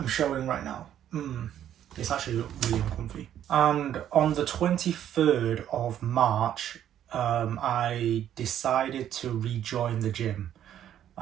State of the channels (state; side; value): quieter; left; 10.7 dB